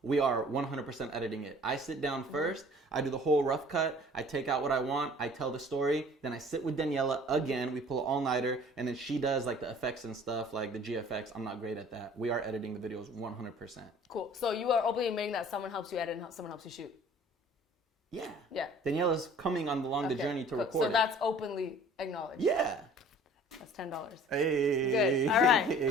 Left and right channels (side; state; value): both; normal; correlation 0.50